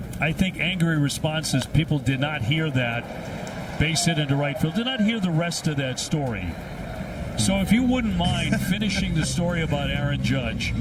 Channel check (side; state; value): both; identical; correlation 1.00